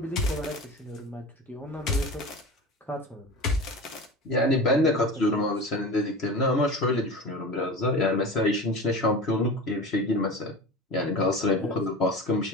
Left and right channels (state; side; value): normal; both; correlation 0.32